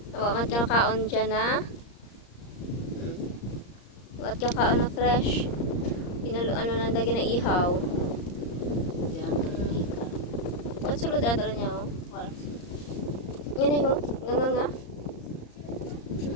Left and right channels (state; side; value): late; right; 34 ms